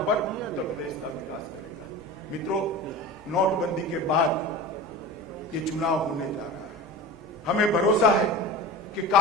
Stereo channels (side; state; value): both; normal; correlation 0.31